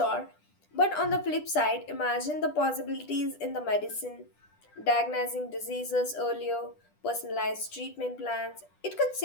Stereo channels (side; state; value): right; late; 10 ms